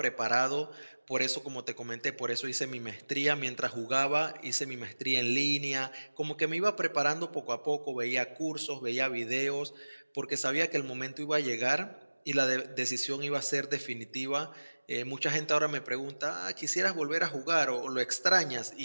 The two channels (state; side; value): inverted; both; correlation -1.00